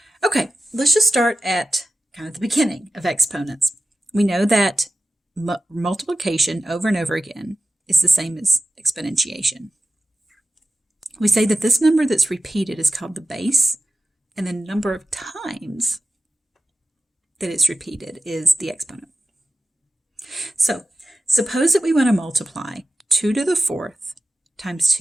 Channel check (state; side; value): normal; both; correlation 0.93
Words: Okay, let's just start at kind of the beginning of exponents. We know that multiplication over and over again is the same as exponentiation. We say that this number that's repeated is called the base, and the number of times that it's repeated is the exponent. So suppose that we want to multiply 2 to the 4th times